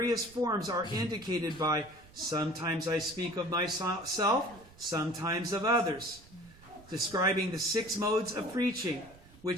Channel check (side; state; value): right; noise; rumble, 23 dB below the sound